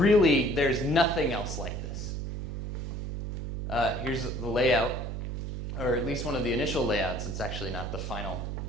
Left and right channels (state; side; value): noise; right; hum, 4 dB below the sound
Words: there's nothing else like this. Here's the layout, or at least one of the initial layouts. It's actually not the final.